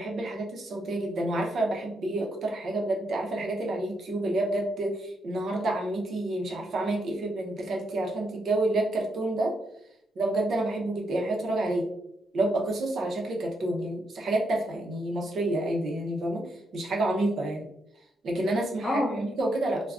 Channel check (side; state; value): both; normal; correlation 0.79